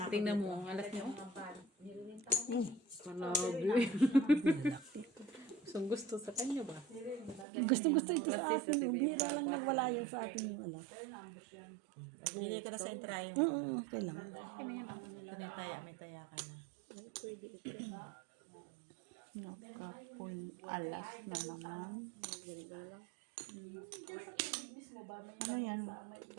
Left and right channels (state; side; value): drops out; left; at 7.5 s